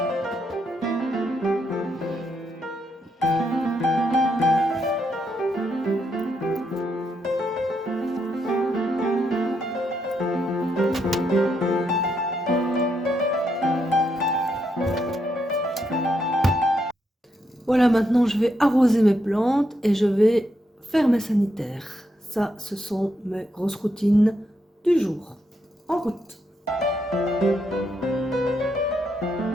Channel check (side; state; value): both; normal; correlation 0.79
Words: Voilà, maintenant je vais arroser mes plantes et je vais faire mes sanitaires. Ça, ce sont mes grosses routines du jour. En route.